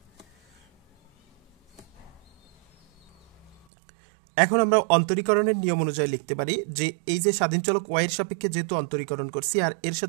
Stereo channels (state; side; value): drops out; left; at 3.7 s